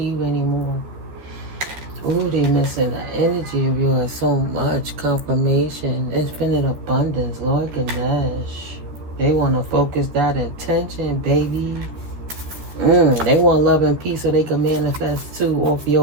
anymore. Ooh, they missing the energy of yours so much. Confirmation, infinite abundance, Lord Ganesh. They want to focus that intention, baby. They want love and peace so they can manifest too off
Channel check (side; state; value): left; late; 13 ms